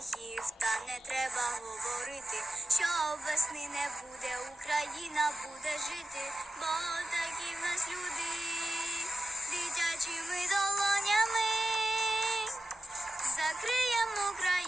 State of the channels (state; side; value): normal; both; correlation 0.92